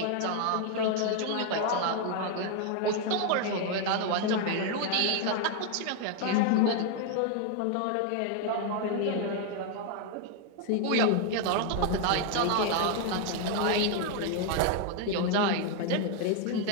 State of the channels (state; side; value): different; both; correlation 0.01